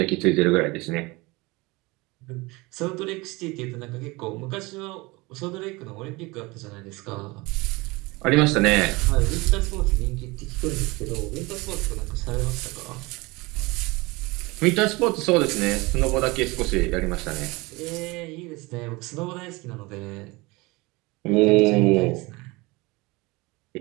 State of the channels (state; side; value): quieter; left; 23.6 dB